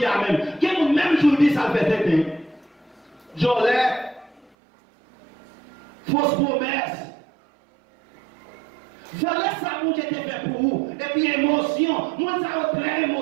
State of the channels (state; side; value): drops out; left; at 4.5 s